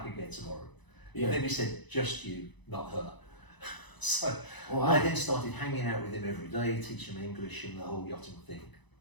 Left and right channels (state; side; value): late; right; 1.0 ms